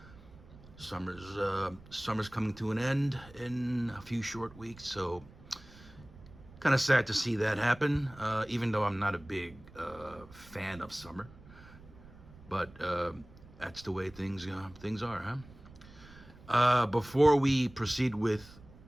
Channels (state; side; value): noise; right; rumble, 21 dB below the sound